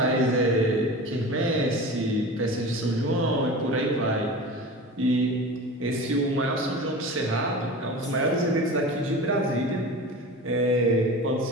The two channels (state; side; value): normal; both; correlation 0.33